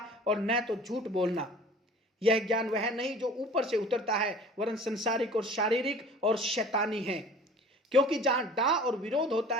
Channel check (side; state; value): both; normal; correlation 0.45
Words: और न तो झूठ बोलना। यह ज्ञान वह नहीं जो ऊपर से उतरता है, वरन संसारिक और शारीरिक और शैतानी है। क्योंकि जहां डाह और विरोध होता